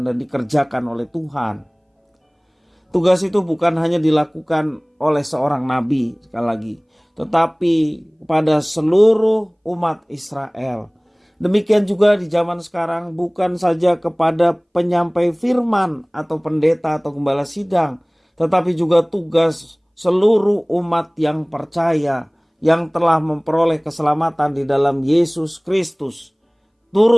dan dikerjakan oleh Tuhan. Tugas itu bukan hanya dilakukan oleh seorang nabi, sekali lagi, tetapi kepada seluruh umat Israel. Demikian juga di zaman sekarang, bukan saja kepada penyampai firman atau pendeta atau gembala sidang, tetapi juga tugas seluruh umat yang percaya, yang telah memperoleh keselamatan di dalam Yesus Kristus,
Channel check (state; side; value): identical; both; correlation 1.00